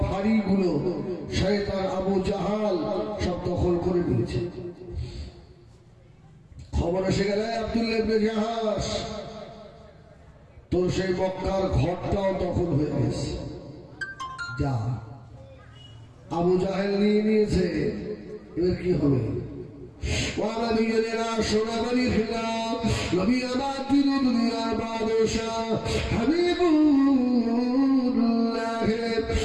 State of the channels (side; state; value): both; identical; correlation 1.00